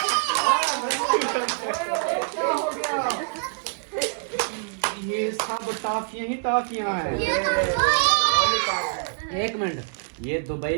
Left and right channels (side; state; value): left; silent; 60 dB below the other